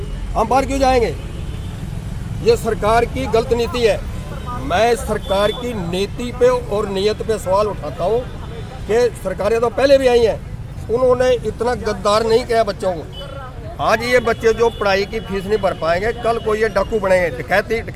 हम बाहर क्यों जाएंगे? ये सरकार की गलत नीति है। मैं सरकार की नीति पे और नीयत पे सवाल उठाता हूँ कि सरकारें तो पहले भी आई हैं, उन्होंने इतना गद्दार नहीं किया बच्चों को। आज ये बच्चे जो पढ़ाई की फीस नहीं भर पाएंगे, कल को ये डाकू बनेंगे,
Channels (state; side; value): identical; both; correlation 1.00